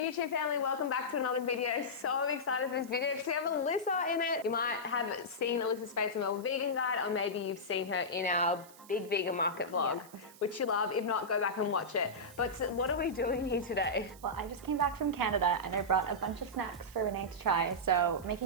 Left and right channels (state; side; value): noise; right; hiss, 21 dB below the sound